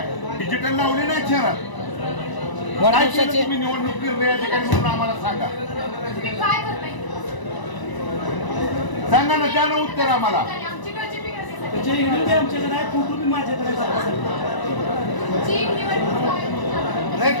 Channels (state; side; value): late; right; 1.0 ms